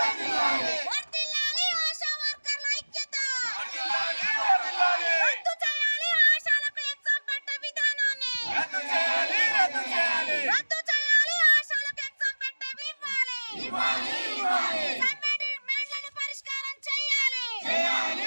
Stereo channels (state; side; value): inverted; both; correlation -1.00